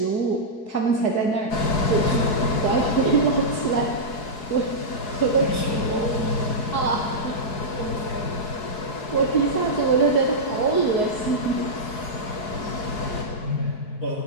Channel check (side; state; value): right; late; 4.7 ms